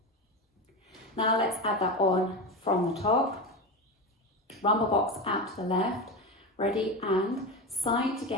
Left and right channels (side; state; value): both; normal; correlation 0.20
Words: Now let's add that on from the top. Rumba box out to the left. Ready, and side